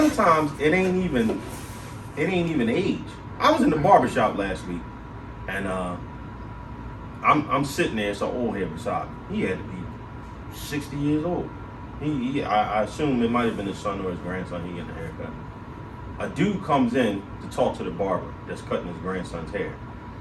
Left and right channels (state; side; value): identical; both; correlation 1.00